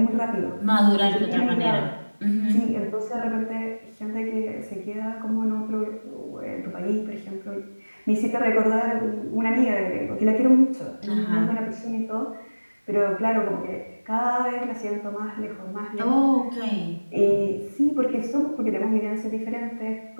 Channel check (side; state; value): both; inverted; correlation -1.00